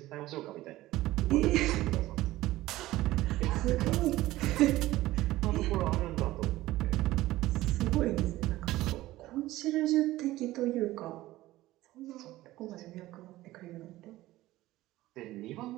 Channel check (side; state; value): left; quieter; 16.7 dB